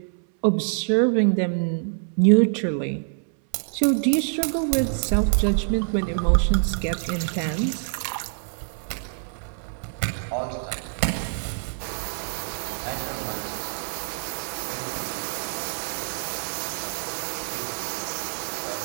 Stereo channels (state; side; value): silent; left; 61 dB below the other